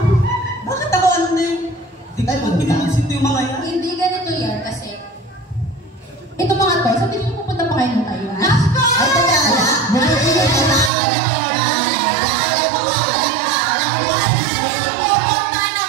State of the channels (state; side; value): drops out; left; at 10.9 s